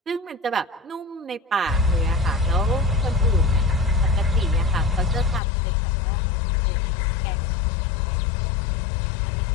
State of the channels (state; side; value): drops out; right; at 5.4 s